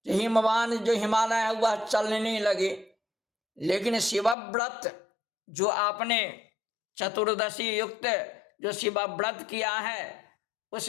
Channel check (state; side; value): drops out; right; at 4.4 s